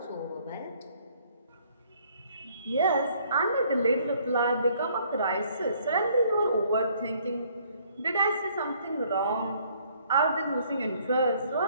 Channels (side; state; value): both; inverted; correlation -0.63